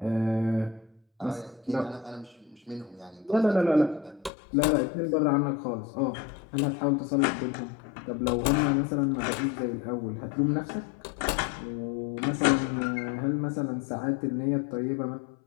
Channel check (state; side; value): drops out; right; at 4.3 s